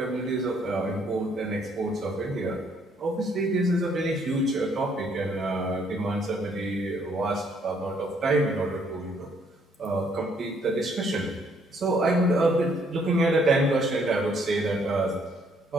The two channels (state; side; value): normal; both; correlation 0.67